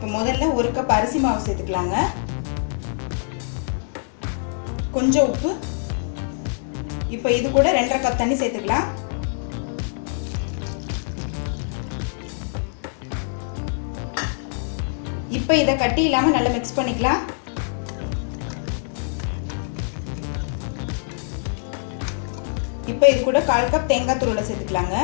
முதல்ல ஒரு கப் அரிசி மாவு சேர்த்துக்கலாங்க. கொஞ்சம் உப்பு. இப்போ இது கூட 2.5 கப் தண்ணி சேர்த்துக்கலாம். இப்போ இதை கட்டி இல்லாமல் நல்லா மிக்ஸ் பண்ணிக்கலாம். இப்போ இது கூட 1/4 கப் தேங்காய் துருவலை சேர்த்துக்கலாங்க.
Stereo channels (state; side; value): silent; right; 61 dB below the other